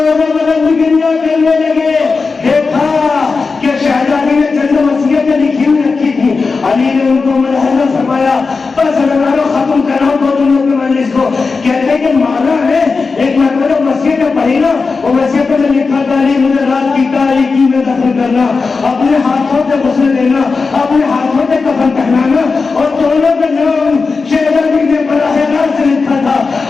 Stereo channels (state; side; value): quieter; right; 4.4 dB